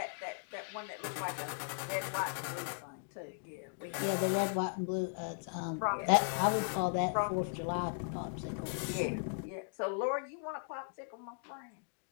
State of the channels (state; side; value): silent; right; digital silence